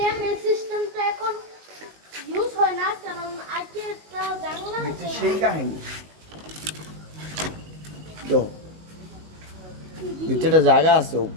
এই সিস্টেমটা এখন ইউজ হয় না, কারণ আগে একটা জানলা আছে। সেই কাহিনী ভিতরে জায়গা আছে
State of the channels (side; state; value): left; late; 19 ms